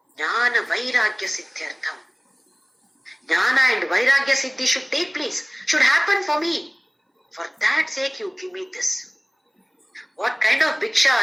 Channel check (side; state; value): both; identical; correlation 1.00